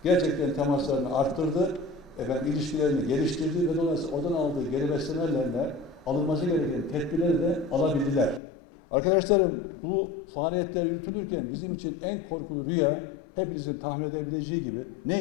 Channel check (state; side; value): drops out; right; at 8.4 s